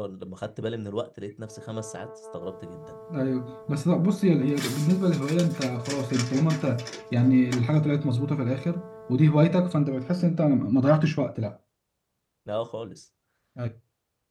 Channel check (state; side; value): identical; both; correlation 1.00